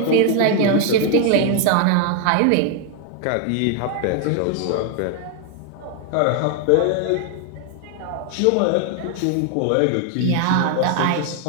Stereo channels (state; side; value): different; both; correlation 0.00